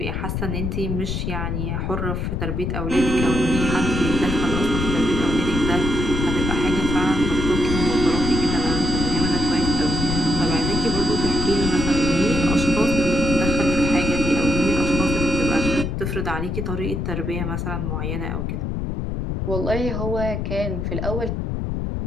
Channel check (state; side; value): noise; left; rumble, 2 dB below the sound